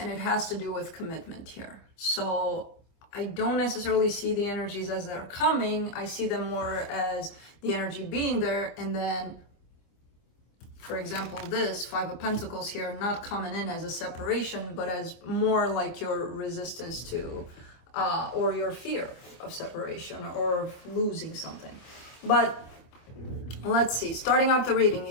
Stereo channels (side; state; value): right; late; 25 ms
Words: it has to do with commitment here. So I don't necessarily see the energies as they're coming. I see them more as the energy being there, and then for example, this Five of Pentacles here, not coming in as a separation, but as more like your resistance to, or your fear of separation or losing something. But let's see, starting off the reading,